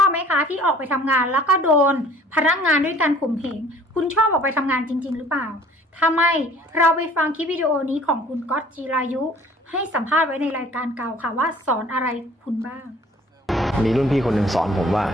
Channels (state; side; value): normal; both; correlation 0.53